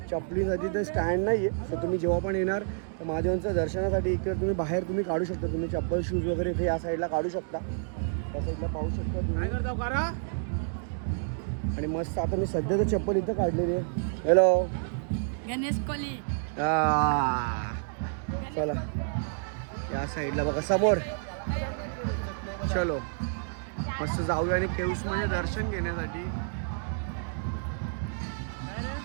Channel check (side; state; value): left; silent; digital silence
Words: चपलीसाठी तर स्टँड नाही आहे. सो तुम्ही जेव्हा पण येणार तर महादेवांचं दर्शनासाठी इकडे तुम्ही बाहेर तुम्ही काढू शकता. तुम्ही चप्पल शूज वगैरे इथे या साईडला काढू शकता. या साईडला पाहू शकता काय करता करा. आणि मस्त आता मी सध्या तर चप्पल इथं काढलेली आहे. हॅलो गणेश कोली. चला या साईडला बघा समोर. चलो मस्त जाऊया आणि केव्समध्ये दर्शन घेण्यासाठी.